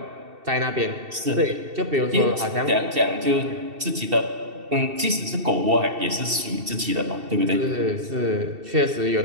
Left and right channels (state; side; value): late; left; 2.7 ms